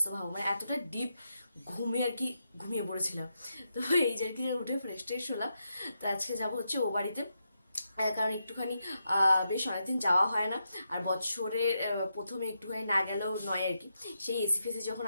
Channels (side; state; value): both; inverted; correlation -0.84